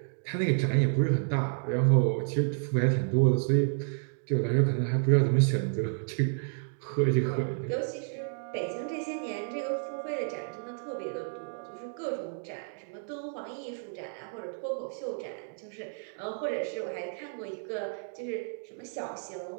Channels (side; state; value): left; silent; digital silence